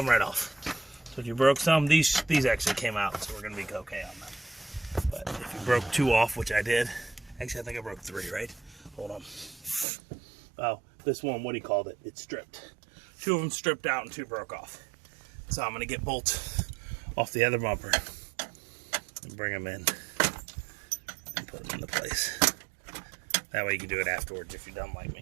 right off. So if you broke some, these actually came out, so we're gonna be okay on them. But if you broke 2 off, which I did, actually I think I broke 3, right? Hold on. Oh, this one, what he called it, it's stripped. 2 of them stripped out and 2 broke off. So I'm gonna get bolts off the other bumper and bring them in and put them into place. That way you can do it afterwards if you're dumb like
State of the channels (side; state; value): left; drops out; at 9.9 s